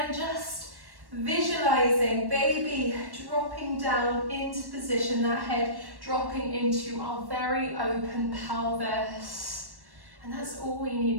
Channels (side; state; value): left; late; 1.1 ms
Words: just visualizing baby dropping down into position, that head dropping into our very open pelvis. And that's all we